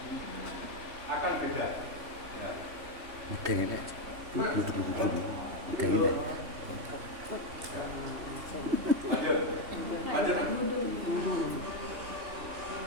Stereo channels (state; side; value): late; left; 3.3 ms